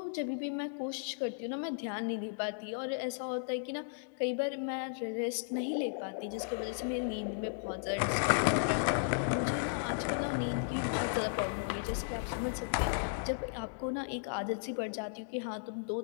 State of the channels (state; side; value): silent; right; digital silence